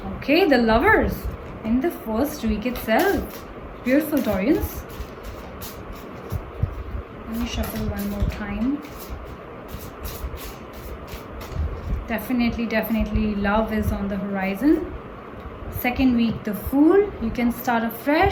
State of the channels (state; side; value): identical; both; correlation 1.00